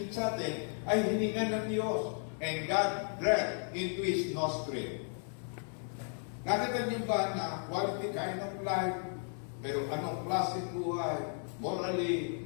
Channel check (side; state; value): right; silent; 55 dB below the other